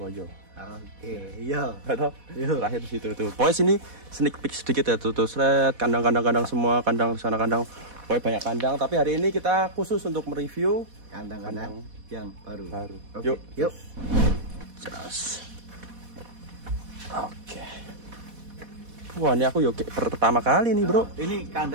Oke, iya. Atau terakhir di situ tuh. Pokoknya sini sneak peek sedikit ya tuh seret kandang-kandang semua, kandang sana kandang. Pokoknya banyak kandang, tapi hari ini kita khusus untuk mereview kandang-kandang yang baru. Yuk. Jelas. Oke. Wah, ini aku yuk pertama kali nih bro. Ini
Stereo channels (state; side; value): late; left; 4.1 ms